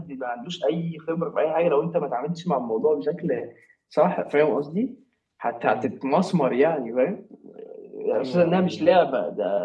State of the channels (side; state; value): both; identical; correlation 1.00